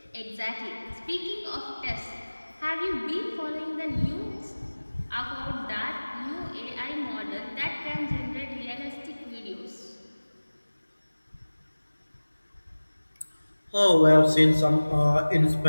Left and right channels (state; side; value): inverted; both; correlation -1.00